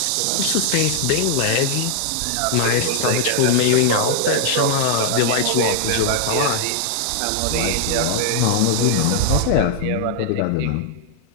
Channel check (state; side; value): different; both; correlation -0.01